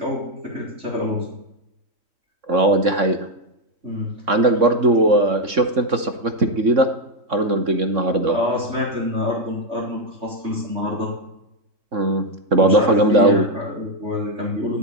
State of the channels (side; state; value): left; late; 3.6 ms